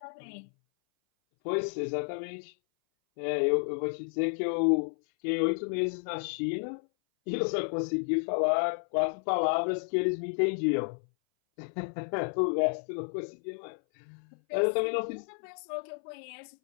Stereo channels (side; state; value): right; silent; 57 dB below the other